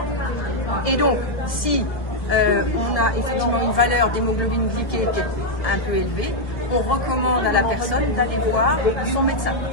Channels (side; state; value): right; late; 1.8 ms